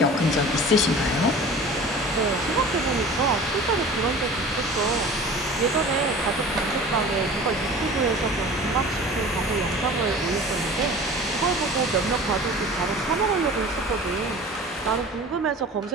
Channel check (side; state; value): both; normal; correlation 0.40